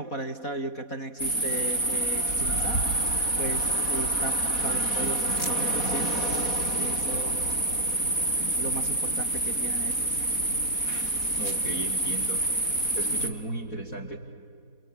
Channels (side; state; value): right; late; 4.1 ms